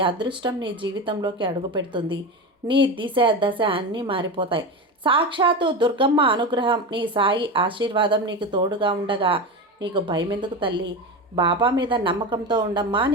అదృష్టం నీ జీవితంలోకి అడుగు పెడుతుంది. నీ దిశ దశ అన్నీ మారిపోతాయి. సాక్షాత్తు దుర్గమ్మ అనుగ్రహం, నీ సాయి ఆశీర్వాదం నీకు తోడుగా ఉండగా నీకు భయం ఎందుకు తల్లి? బాబా మీద నమ్మకంతో ఉండమ్మా,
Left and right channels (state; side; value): normal; both; correlation 0.22